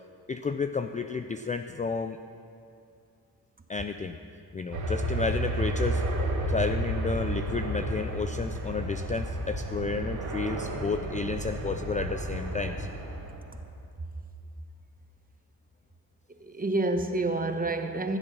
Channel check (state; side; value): normal; both; correlation 0.47